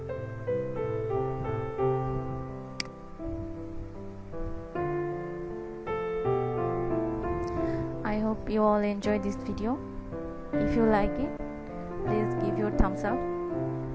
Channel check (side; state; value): both; identical; correlation 1.00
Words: I hope you all enjoyed this video. If you like it, please give your thumbs up.